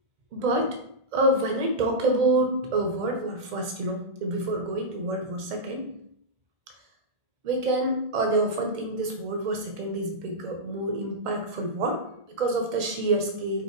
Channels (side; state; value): left; late; 2.1 ms